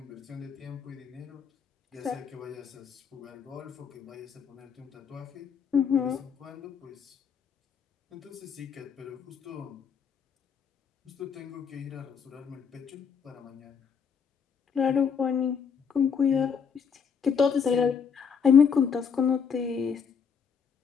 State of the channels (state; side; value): quieter; right; 6.6 dB